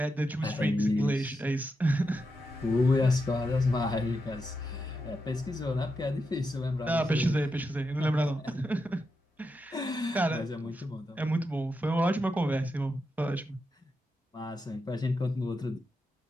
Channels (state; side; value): normal; both; correlation 0.86